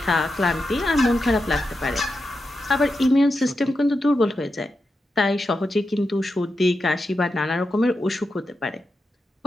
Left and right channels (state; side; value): normal; both; correlation 0.88